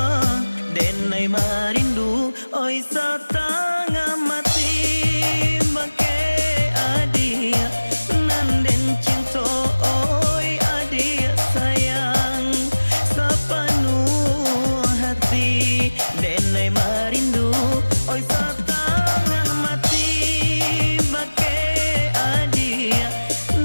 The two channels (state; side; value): inverted; both; correlation -1.00